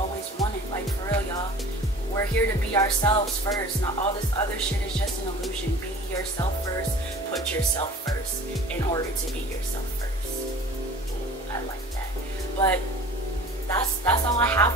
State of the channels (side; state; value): both; normal; correlation 0.43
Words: wanted. Like, for real, y'all. We're here to be ourselves first. Not all this other shit is just an illusion. Be yourself first. Put yourself first in order to be yourself first. Ooh, I like that. But that's all I